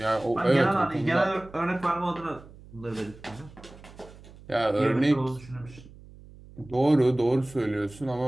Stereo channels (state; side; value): noise; right; hum, 20 dB below the sound